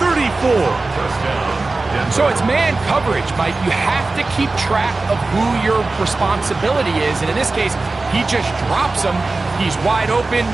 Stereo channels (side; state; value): left; quieter; 3.4 dB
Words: So it's man coverage, Mike. You have to keep track of who your responsibility is. And in this case, he just drops him. He's wide open,